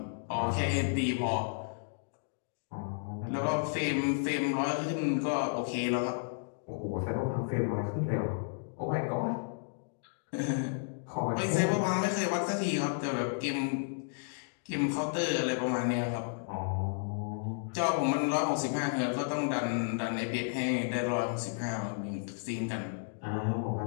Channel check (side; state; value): right; silent; digital silence